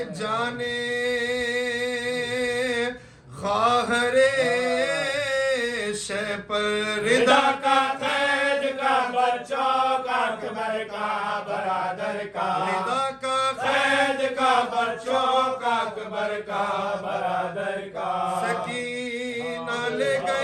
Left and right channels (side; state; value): both; identical; correlation 1.00